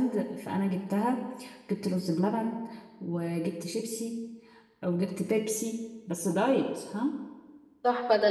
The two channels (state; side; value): identical; both; correlation 1.00